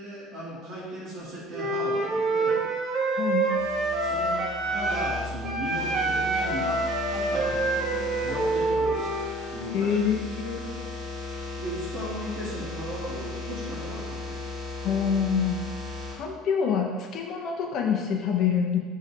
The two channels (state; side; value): normal; both; correlation 0.47